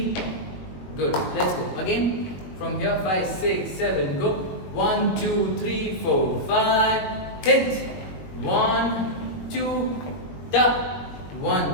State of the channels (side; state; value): right; late; 21 ms